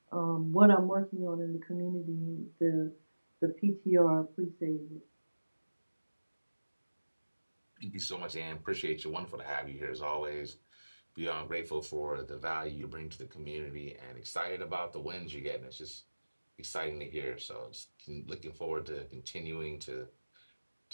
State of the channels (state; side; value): inverted; both; correlation -1.00